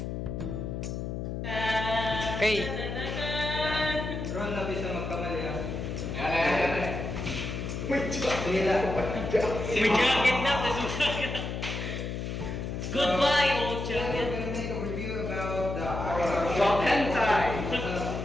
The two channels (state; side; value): noise; left; hum, 4 dB below the sound